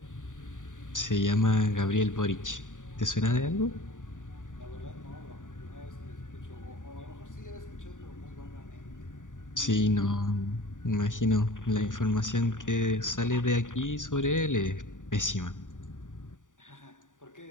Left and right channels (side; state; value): right; late; 0.87 ms